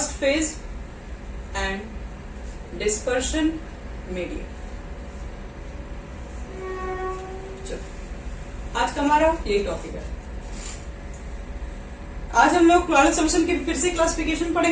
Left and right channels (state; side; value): identical; both; correlation 1.00